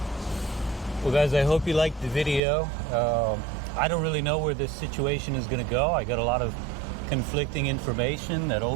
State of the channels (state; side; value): drops out; left; at 2.4 s